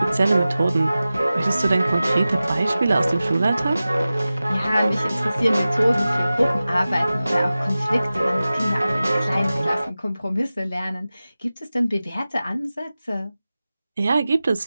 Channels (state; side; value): inverted; both; correlation -0.96